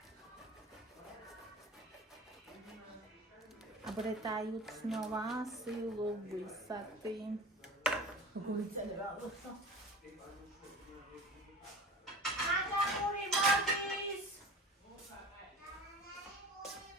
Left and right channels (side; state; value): both; normal; correlation 0.37